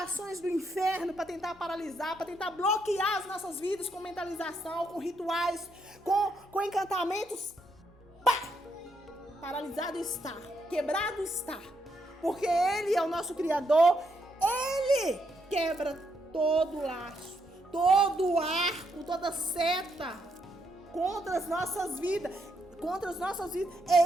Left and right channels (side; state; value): both; normal; correlation 0.77